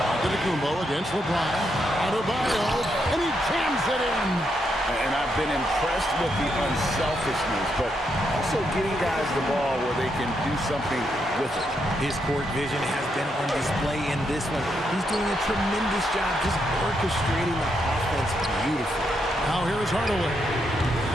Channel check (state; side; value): normal; both; correlation 0.80